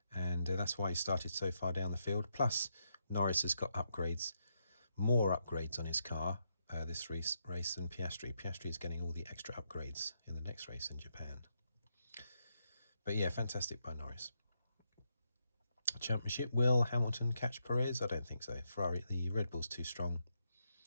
and that's why he started so far down the field. Plus, Norris has got more upgrades on his car this race than Piastri. Piastri is getting all the extra upgrades in the next race in Japan. But yeah, fantastic by Norris. Championship, will Hamilton catch Perez? I don't think so. Ferrari, the Red Bull's too strong.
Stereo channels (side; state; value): both; inverted; correlation -0.81